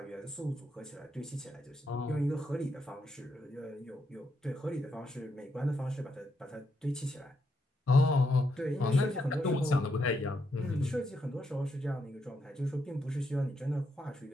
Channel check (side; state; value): both; normal; correlation 0.80